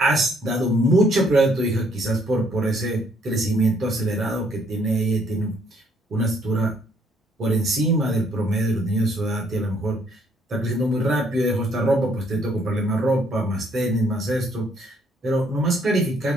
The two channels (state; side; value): normal; both; correlation 0.67